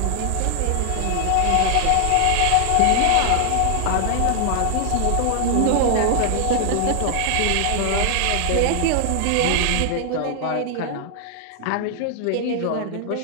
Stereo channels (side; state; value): both; different; correlation 0.00